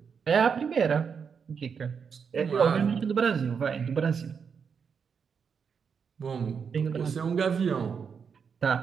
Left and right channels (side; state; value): left; quieter; 6.4 dB